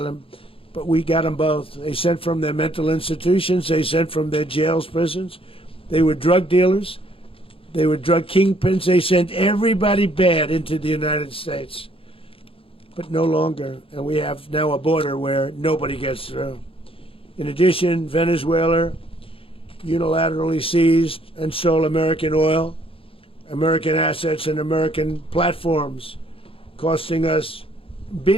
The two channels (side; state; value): right; late; 0.27 ms